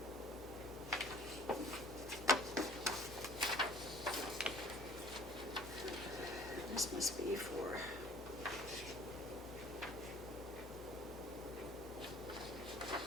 This must be for.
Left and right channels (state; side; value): noise; left; hum, 23 dB below the sound